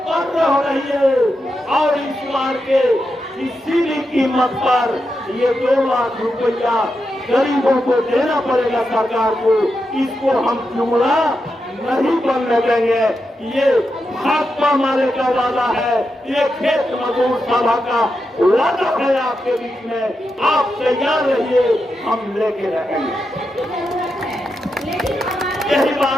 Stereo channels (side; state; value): both; normal; correlation 0.87